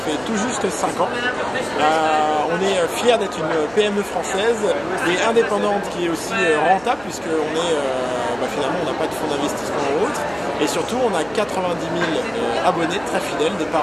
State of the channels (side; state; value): right; noise; hum, 23 dB below the sound